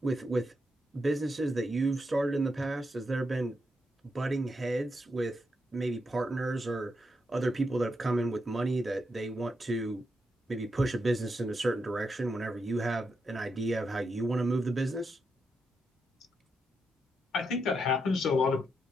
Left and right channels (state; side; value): normal; both; correlation 0.83